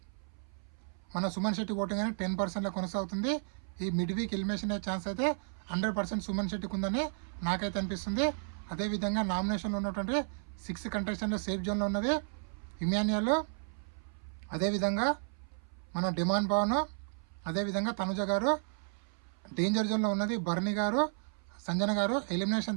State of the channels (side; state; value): left; silent; 56 dB below the other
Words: మన సుమన్ శెట్టి ఓటింగ్ అనేది 10%లో కొనసాగుతుంది. ఈ మిడ్ వీక్ ఎలిమినేషన్ అయ్యే ఛాన్స్ అయితే 100% సుమన్ శెట్టికి ఉందని నాకైతే అనిపిస్తుంది. అదేవిధంగా నామినేషన్లో ఉన్నటువంటి 6 కంటెస్టెంట్లో సేఫ్ జోన్లో ఉన్నది ఇమాన్యుయల్, అదేవిధంగా మన డిమాండ్ పవన్, అదేవిధంగా తనుజ గారు. డేంజర్ జోన్లో ఉన్నది భరణి గారు, సంజన గారు.